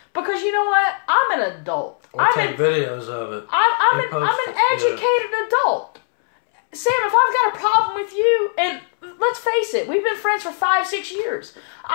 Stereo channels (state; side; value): silent; right; 66 dB below the other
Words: Because you know what? I'm an adult. Or take videos of it. I'm an educated adult. Sam, if I've got a problem with you, and let's face it, we've been friends for 5-6 years.